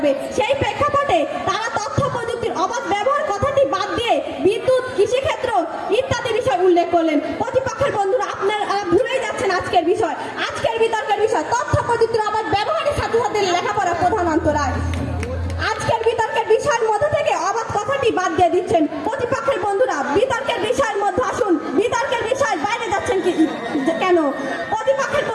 সেই প্রেক্ষাপটে তারা তথ্য প্রযুক্তির অবাধ ব্যবহার কথাটি বাদ দিয়ে বিদ্যুৎ, কৃষিক্ষেত্র ইত্যাদি বিষয় উল্লেখ করলেন। প্রতিপক্ষের বন্ধুরা, আপনারা ভুলেই যাচ্ছেন আজকের বিষয়, আজকের বিতর্কের বিষয় তথ্য প্রযুক্তির অবাধ ব্যবহারের সাথে সাথে লেখাপড়া প্রধান অন্তরায়। আজকের বিতর্কের বিষয়ের মধ্যে থেকে অবাধ কথাটি বাদ দিয়ে দিচ্ছেন। প্রতিপক্ষের বন্ধুরা, বিতর্কের বিষয়ের মধ্যে আসুন, বিতর্কের বিষয় বাইরে যাচ্ছেন কেন? প্রতিপক্ষের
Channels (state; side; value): identical; both; correlation 1.00